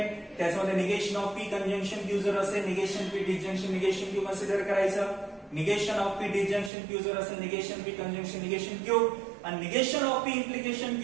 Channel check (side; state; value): left; drops out; at 6.7 s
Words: त्याच्यामध्ये negation of P conjunction Q जर असेल, negation P disjunction negation Q consider करायचं. Negation of P disjunction Q जर असेल, negation P conjunction negation Q. आणि negation of P implication